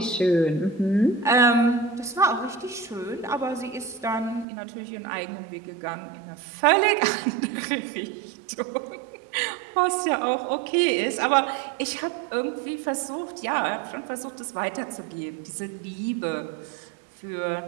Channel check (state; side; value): drops out; left; at 4.5 s